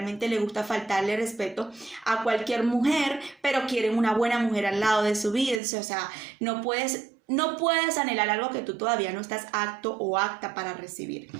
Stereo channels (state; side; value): drops out; left; at 5.6 s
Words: les gusta faltarle respeto a cualquier mujer, pero quieren una buena mujer al lado de su vida. O sea, no puedes anhelar algo que tú todavía no estás apto o apta para recibir.